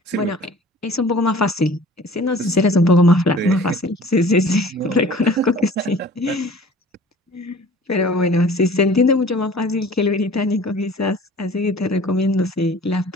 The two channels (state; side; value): normal; both; correlation 0.47